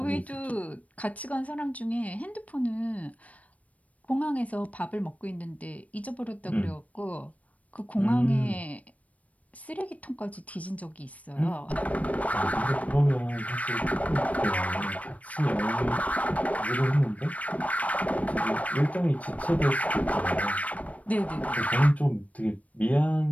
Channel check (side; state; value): right; late; 0.068 ms